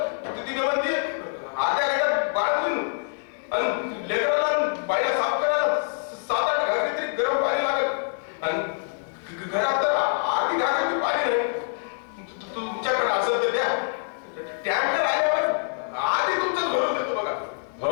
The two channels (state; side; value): silent; right; digital silence